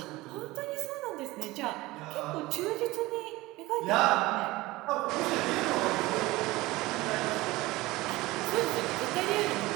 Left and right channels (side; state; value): left; quieter; 19.9 dB